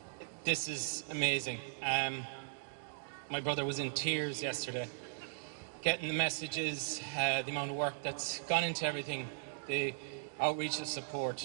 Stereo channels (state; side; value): silent; left; digital silence